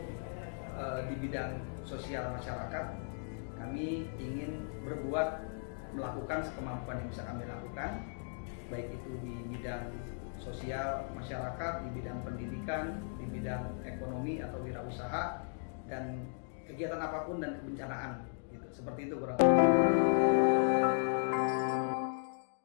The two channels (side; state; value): right; silent; digital silence